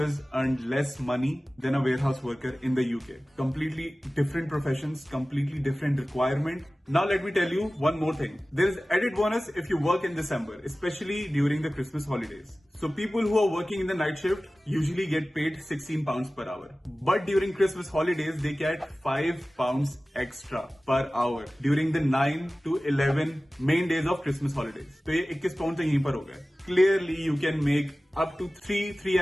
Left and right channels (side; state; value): both; normal; correlation 0.97